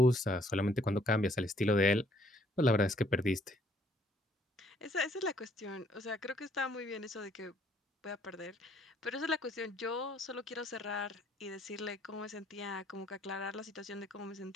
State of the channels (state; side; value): normal; both; correlation 0.64